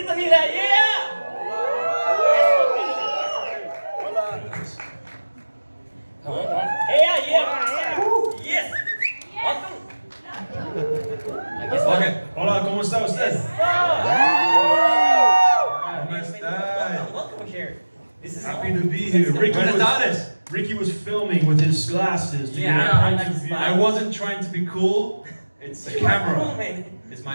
yeah! Come on. Yeah. Yes! Welcome! Aquí está. Okay. Hola, ¿cómo está usted? Welcome here. This is Happy to be here. Ricky was filming with his glasses. To I wasn't trying to be cool. It's a camera. Cool, man. It's my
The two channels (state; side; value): inverted; both; correlation -1.00